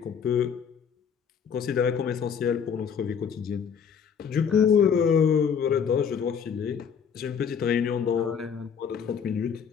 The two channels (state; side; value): quieter; right; 7.1 dB